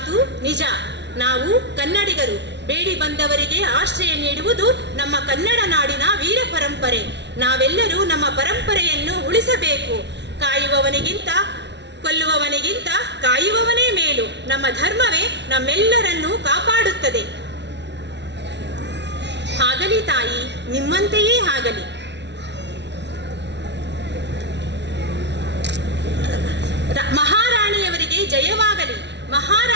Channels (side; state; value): left; late; 0.51 ms